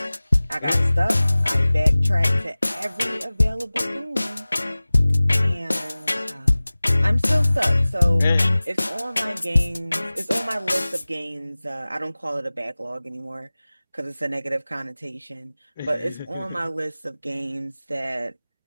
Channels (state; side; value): inverted; both; correlation -0.99